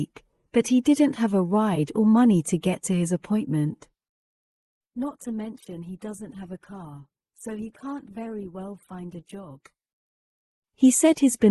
but he didn't have a ride or money to get to his appointment. Not to mention he doesn't have a car, so he can't very well find a job. He said he's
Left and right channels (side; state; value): both; identical; correlation 1.00